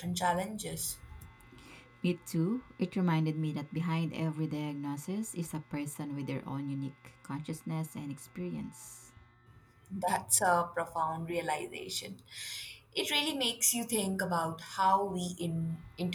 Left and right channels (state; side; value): identical; both; correlation 1.00